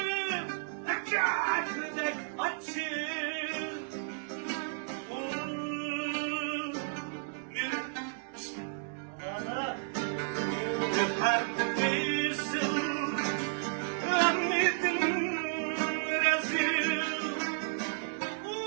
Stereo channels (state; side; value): silent; left; digital silence